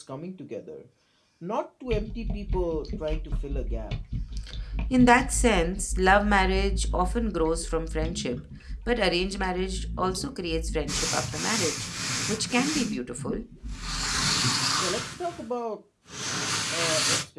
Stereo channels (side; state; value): both; identical; correlation 1.00